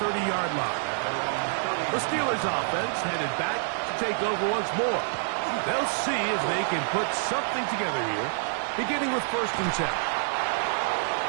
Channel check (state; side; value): silent; left; digital silence